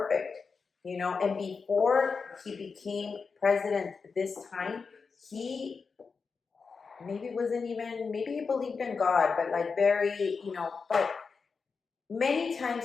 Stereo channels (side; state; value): right; quieter; 5.1 dB